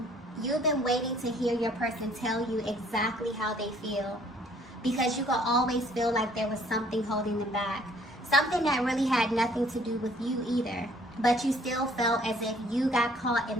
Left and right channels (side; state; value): both; normal; correlation 0.60